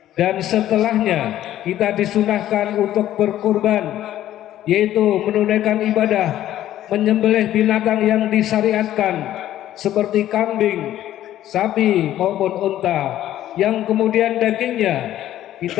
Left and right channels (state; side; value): quieter; right; 12.7 dB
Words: dan setelahnya kita disunahkan untuk berkurban, yaitu menunaikan ibadah menyembelih binatang yang disyariatkan seperti kambing, sapi maupun unta, yang kemudian dagingnya